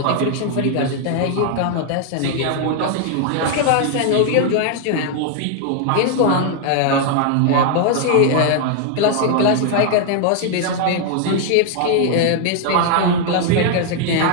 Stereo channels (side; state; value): both; different; correlation 0.00